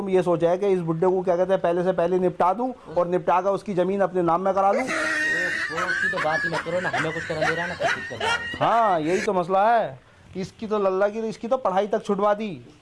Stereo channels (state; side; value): identical; both; correlation 1.00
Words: ये सोचा है कि इस बुड्ढे को क्या कहते हैं पहले से पहले निपटा दूं और निपटा कर उसकी जमीन अपने नाम में करा लूं। वो उसकी तो बात ही मत करो ना, हमें कुछ करने दे रहा है ना कुछ कर रहा है। हाँ यही तो मसला है। इसकी तो लल्ला की, इसकी तो पढ़ाई तक छुड़वा दी।